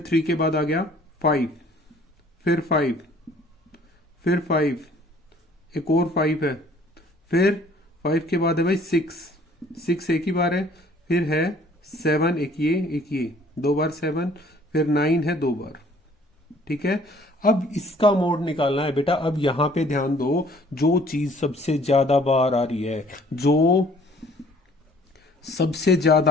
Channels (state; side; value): normal; both; correlation 0.56